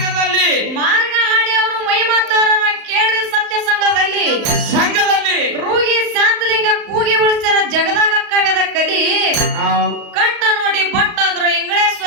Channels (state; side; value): late; left; 35 ms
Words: ಹಾಡಿ ಅವರು ಮೈ ಮಾತಾರ ಕೇಳ್ರಿ ಸತ್ಯ ಸಂಘದಲ್ಲಿ ರೂಗಿ ಶಾಂತಲಿಂಗ ಕೂಗಿ ಉಳಿಸ್ಯಾರ ಜಗದಾಗ ಕವ್ಯದ ಕಲಿ ಕಟ್ಟ ನೋಡಿ ಬಟ್ಟಾದ್ರು